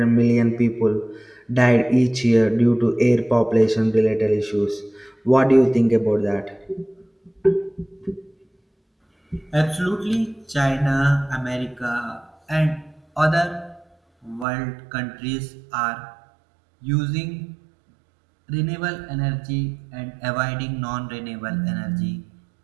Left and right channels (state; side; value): drops out; left; at 14.5 s